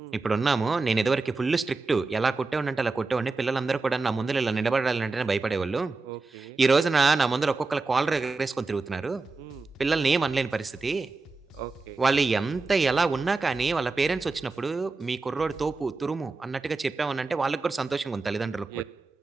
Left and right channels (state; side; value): quieter; left; 3.8 dB